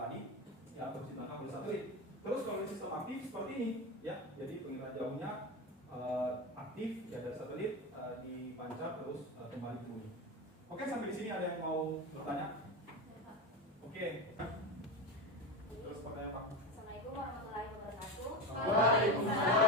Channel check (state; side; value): normal; both; correlation 0.20